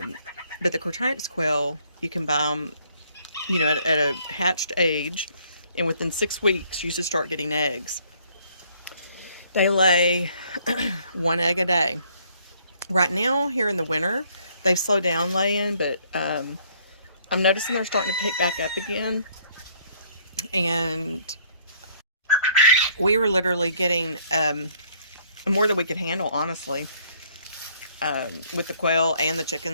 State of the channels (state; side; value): inverted; both; correlation -0.63